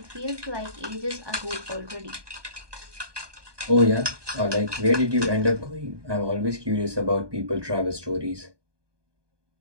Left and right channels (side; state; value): left; late; 1.2 ms